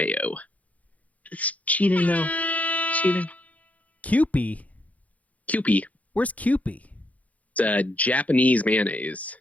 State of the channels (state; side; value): late; right; 0.071 ms